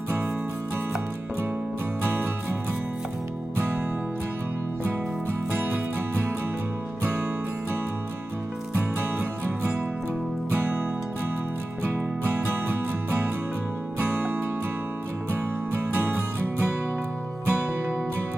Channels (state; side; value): normal; both; correlation 0.95